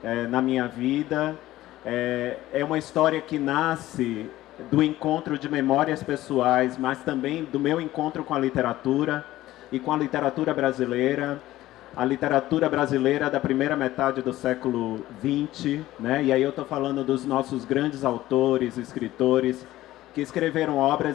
Na minha vida. É uma história que nasce do encontro de memórias pessoais, mas também do meu encontro com a literatura e com a literatura brasileira. A literatura brasileira da primeira metade do século XX, né? E aí eu estou falando dos nossos grandes autores, escritores, que escreveram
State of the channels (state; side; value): quieter; right; 15.6 dB